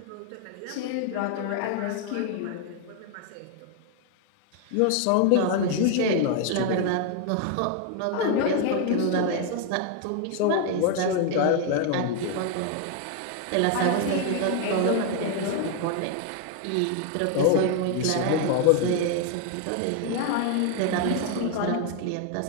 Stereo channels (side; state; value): both; different; correlation 0.01